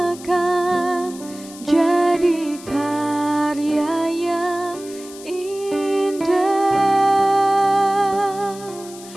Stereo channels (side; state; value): left; noise; hiss, 18 dB below the sound